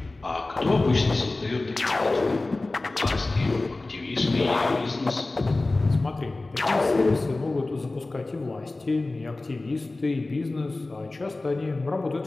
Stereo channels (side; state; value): right; quieter; 3.1 dB